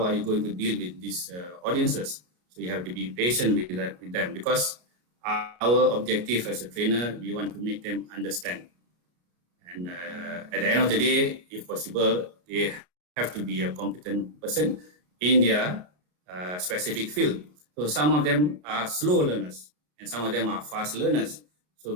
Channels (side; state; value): left; late; 33 ms